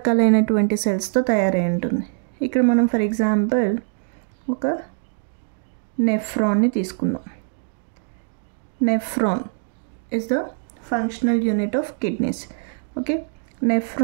సెల్స్తో తయారై ఉంటుంది. ఇక్కడ మనం ఫర్ ఎగ్జాంపుల్ ఒక నెఫ్రాన్ని తీసుకుందాం. Nephron is the functional unit of kidneys. Okay,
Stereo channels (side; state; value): left; silent; digital silence